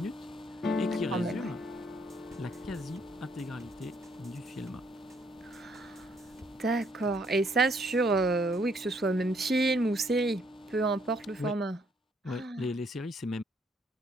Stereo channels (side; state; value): both; normal; correlation 0.69